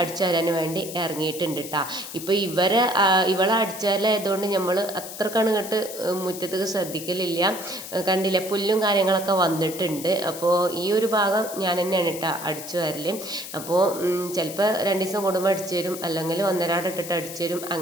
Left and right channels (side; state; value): left; noise; hiss, 11 dB below the sound